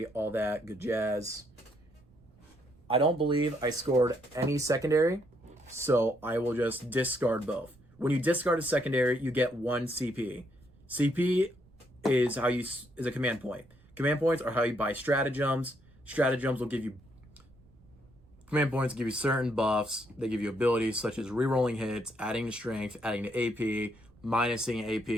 all that good jazz. I don't believe I scored any secondary, so I will just discard both. When you discard a secondary, you get 1 CP. CP is a command point. Command points are how you buy stratagems. Stratagems will give you command points, give you certain buffs. They give you abilities such as rerolling hits, adding to strength, adding to AP, minusing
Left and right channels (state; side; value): noise; right; rumble, 28 dB below the sound